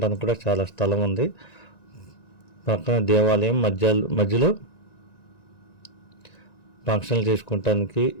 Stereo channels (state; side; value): late; right; 1.9 ms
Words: కూడా చాలా స్థలం ఉంది. పక్కన దేవాలయం మధ్యలో ఫంక్షన్లు చేసుకోవటానికి